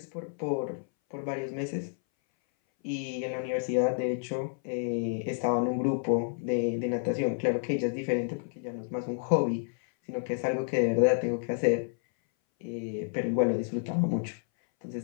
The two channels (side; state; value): right; silent; 58 dB below the other